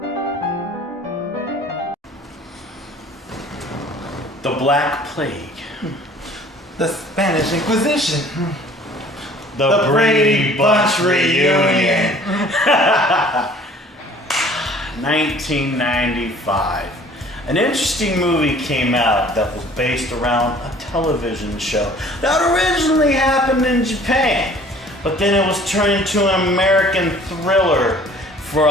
The Black Plague. The Spanish Inquisition. The Brady Bunch reunion. 1995. An interesting movie came out that was based around a television show that originally happened in Japan, but then it was turned into an American thriller for a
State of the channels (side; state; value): both; normal; correlation 0.51